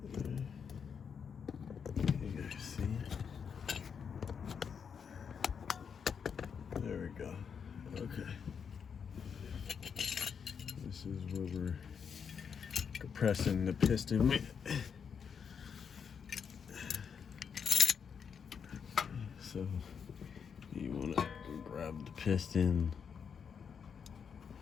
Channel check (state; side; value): quieter; right; 6.8 dB